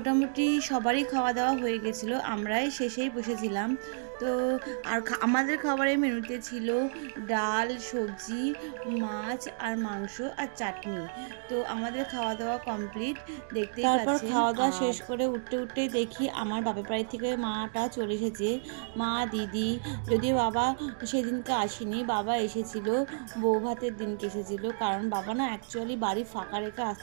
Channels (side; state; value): left; silent; digital silence